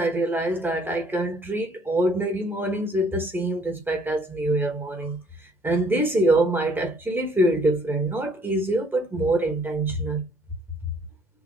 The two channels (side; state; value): both; normal; correlation 0.61